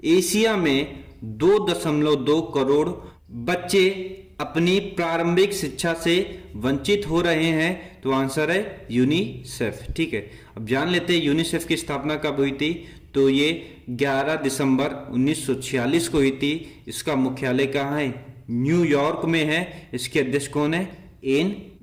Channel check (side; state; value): both; identical; correlation 1.00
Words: एशिया में 2.2 करोड़ बच्चे अपनी प्रारंभिक शिक्षा से वंचित हो रहे हैं? तो आंसर है यूनिसेफ, ठीक है। अब जान लेते हैं यूनिसेफ की स्थापना कब हुई थी। तो ये 11 दिसंबर 1946 को हुई थी। इसका मुख्यालय कहाँ है? न्यूयॉर्क में है। इसके अध्यक्ष कौन है? एन